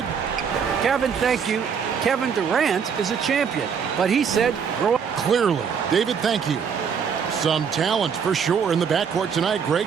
Kevin, thank you. Kevin Durant is a champion, but he said grow up. Clearly. David, thank you. Some talent for sure in the backcourt tonight.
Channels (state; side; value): quieter; left; 6.8 dB